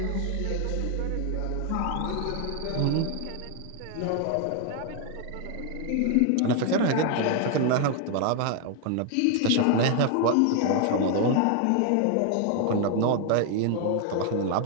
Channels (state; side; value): different; both; correlation 0.00